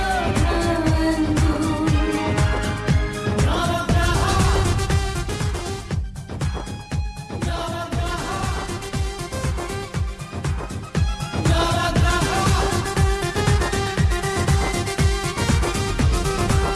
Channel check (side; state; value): both; identical; correlation 1.00